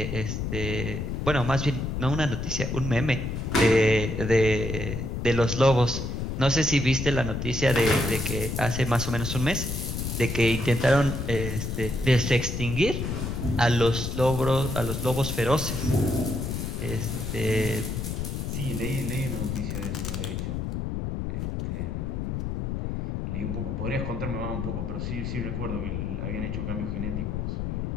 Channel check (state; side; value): noise; left; rumble, 3 dB below the sound